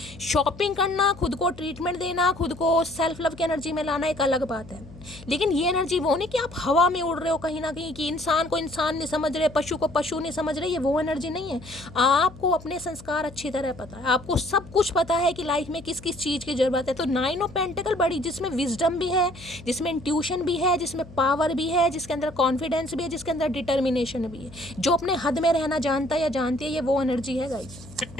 शॉपिंग करना, खुद को ट्रीटमेंट देना, खुद को सेल्फ लव की एनर्जी में लाना एक अलग बात है, लेकिन ये एनर्जी वो नहीं कि आप हवा में उड़ रहे हो कहीं ना कहीं, कि इंसान को इंसान नहीं समझ रहे, पशु को पशु नहीं समझ रहे। ये वो एनर्जी नहीं है। आपको अपने संस्कार अच्छी तरह पता है, आपको सब कुछ पता है कि लाइफ में किस किस चीज़ की ज़रूरत है। तो 9 ऑफ पेंटिकल बड़ी, जिसमें विजडम भी है, जिसमें इंट्यूशन भी है, जिसमें पावर भी है, जिसके अंदर कॉन्फिडेंस भी है, जिसके अंदर डिटर्मिनेशन भी है, जो अपने हद में रहना जानता है या जानती है, ये वो एनर्जी है गाइस।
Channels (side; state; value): left; noise; hum, 18 dB below the sound